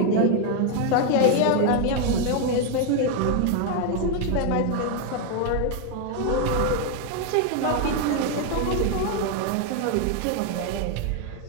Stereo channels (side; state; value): both; different; correlation 0.01